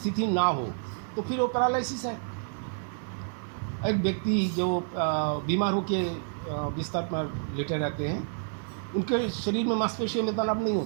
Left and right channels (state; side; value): silent; left; 59 dB below the other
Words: ना हो तो फिर वो पैरालिसिस है। एक व्यक्ति जो बीमार होकर बिस्तर पर लेटे रहते हैं, उनके शरीर में मांसपेशियों में तनाव नहीं